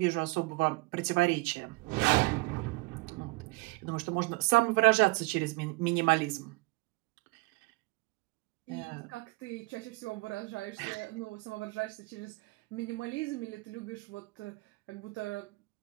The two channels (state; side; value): quieter; left; 25.4 dB